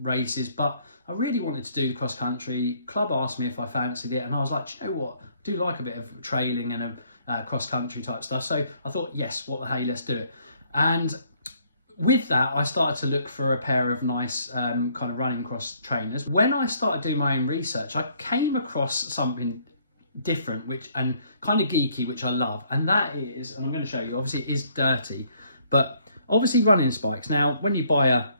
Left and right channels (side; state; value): both; inverted; correlation -0.65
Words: races, but I really wanted to do the cross country. Club asked me if I fancied it, and I was like, you know what, I do like a bit of trailing and a cross country type stuff. So I thought, yes, what the hey, let's do it. And with that, I started to look for a pair of nice kind of running cross trainers. When I started doing my own research, I came across something different, and kind of geeky, which I love. And that is, and I'm going to show you, obviously it is dirty, but obviously running spikes. Now, when you buy a